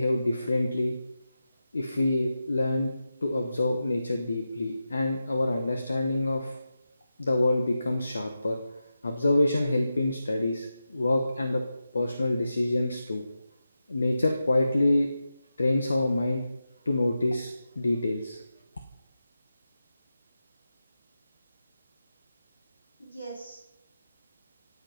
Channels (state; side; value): inverted; both; correlation -0.90